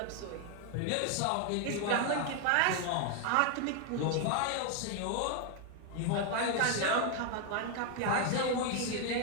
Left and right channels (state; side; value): different; both; correlation 0.00